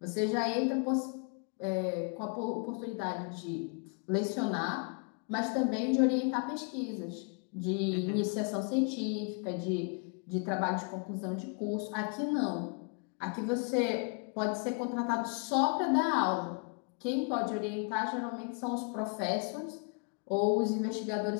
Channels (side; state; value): right; quieter; 36.7 dB